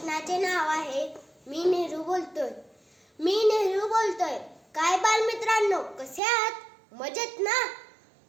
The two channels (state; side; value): drops out; left; at 6.2 s